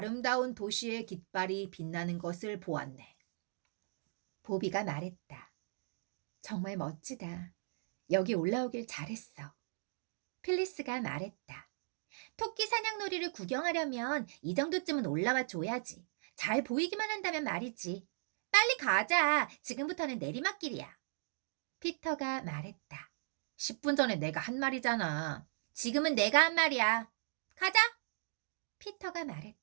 도시의 깃발이 빛나는 것을 보았네. 보비가 말했다. 정말 멋지다. 여기 올라오길 잘했어. 필리스가 말했다. 토끼 사냥놀이를 구경하려면 이 정도쯤은 올라와 줘야지. 잘 보이기만 한다면 말이지. 빨리 가자. 지금부터는 내리막길이야. 피터가 말했다. 10분 전에 내가 한 말이잖아. 지금은 내가 한 말이야. 가자. 피터가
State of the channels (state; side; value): silent; left; digital silence